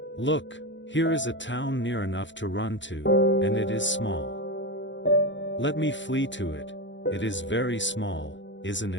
Look, here is a town near enough to run to, and it is small. Let me flee to it, it is very small, isn't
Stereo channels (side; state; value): right; late; 0.54 ms